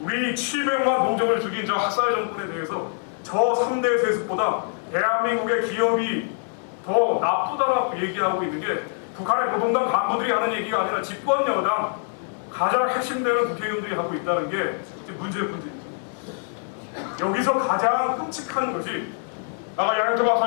우리 700만 동족을 죽인 저 학살 정권에 대해서 저 3대 세습보다 대한민국의 기업이 더 나쁘다라고 얘기하고 있는 게 북한의 노동당 간부들이 하는 얘기가 아니라 집권 여당 가장 핵심되는 국회의원들이 하고 있다는 게 문제의 문제입니다. 여기서 가장 끔찍한 것이 아까 양현태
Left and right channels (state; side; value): silent; right; 62 dB below the other